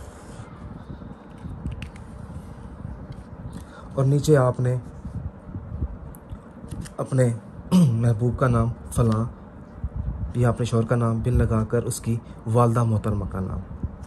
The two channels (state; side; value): identical; both; correlation 1.00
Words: और नीचे आपने अपने महबूब का नाम फ़लाँ या अपने शौहर का नाम बिन लगाकर उसकी वालदा मोहतरमा का नाम,